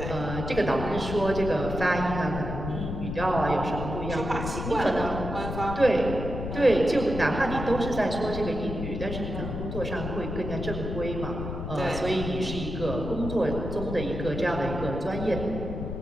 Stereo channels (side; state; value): left; noise; rumble, 5 dB below the sound